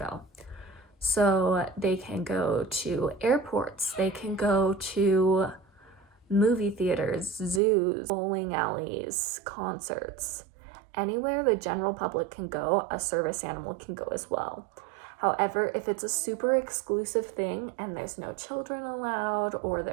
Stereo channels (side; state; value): left; drops out; at 7.6 s